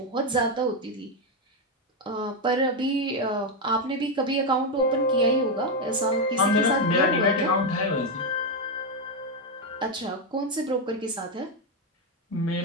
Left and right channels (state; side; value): normal; both; correlation 0.05